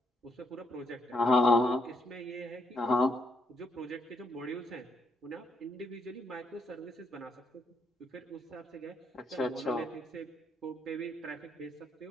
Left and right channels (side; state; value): both; normal; correlation 0.75